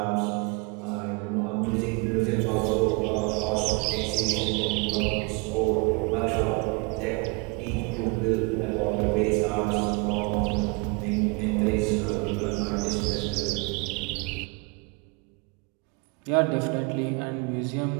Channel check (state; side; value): quieter; left; 30.2 dB